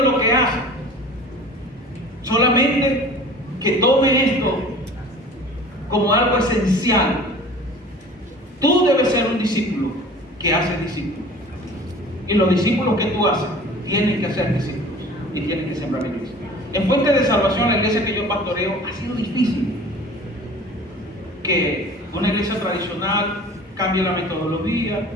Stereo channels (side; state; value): both; normal; correlation 0.43